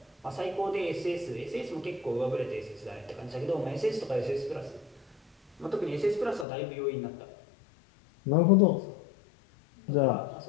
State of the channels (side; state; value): right; drops out; at 6.5 s